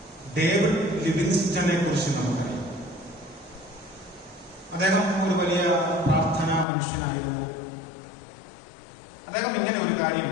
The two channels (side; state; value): right; drops out; at 6.7 s